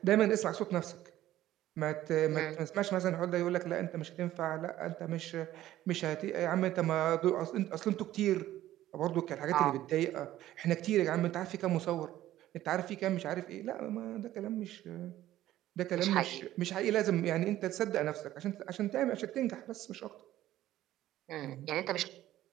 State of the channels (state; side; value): quieter; left; 14.0 dB